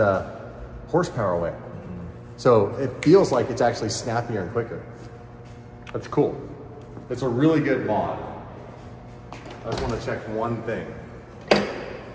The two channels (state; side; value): identical; both; correlation 1.00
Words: horsepower away. So it feels like it's actually snappier and quicker. That's cool. It's a really good mod. I just want to check one thing.